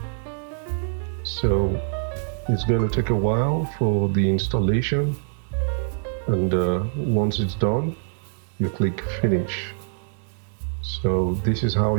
So it's going to take a while for the installation, and once it's done, you click Finish. So this is how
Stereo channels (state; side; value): silent; left; digital silence